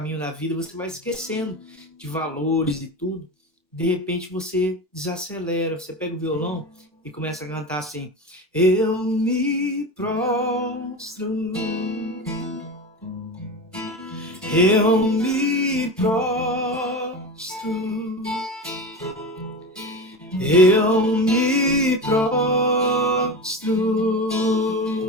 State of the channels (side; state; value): both; normal; correlation 0.26